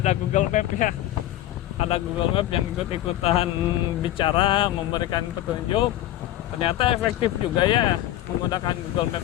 Google Map ya. Ada Google Map yang ikut-ikutan bicara, memberikan petunjuk. Ternyata efektif juga ya menggunakan Google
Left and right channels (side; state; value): right; quieter; 13.9 dB